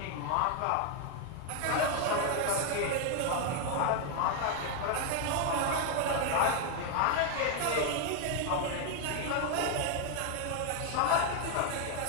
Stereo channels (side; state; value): both; different; correlation 0.00